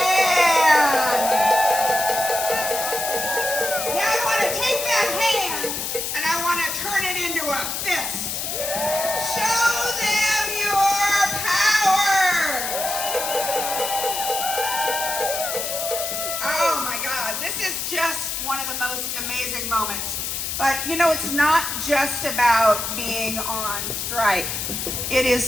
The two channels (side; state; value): left; noise; hiss, 3 dB below the sound